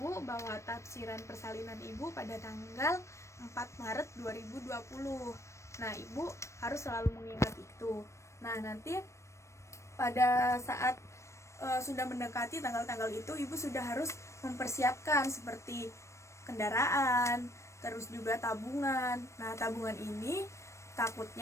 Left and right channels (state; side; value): late; right; 0.14 ms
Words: bahwa tafsiran persalinan Ibu pada tanggal 4 Maret 2020. Nah, Ibu harus selalu mengingat itu. Nah, nanti pada saat sudah mendekati tanggal-tanggal itu, Ibu sudah harus mempersiapkan seperti kendaraan, terus juga tabungan. Nah, tabungan ini